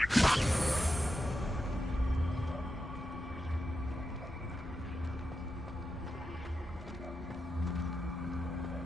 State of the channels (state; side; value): normal; both; correlation 0.88